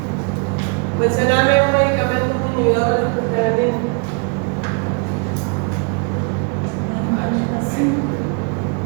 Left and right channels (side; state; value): left; quieter; 35.8 dB